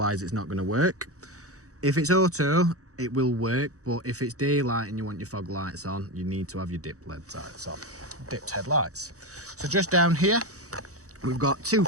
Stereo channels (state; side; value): late; left; 0.65 ms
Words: it's not going to work. If it's auto, it will work, but if it's daylight and you want your fog lights on, you need to have your dipped lights on, dipped headlights. So just down here, we've got two